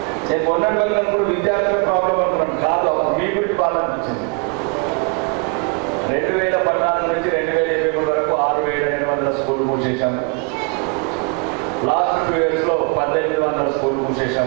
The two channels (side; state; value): left; quieter; 33.3 dB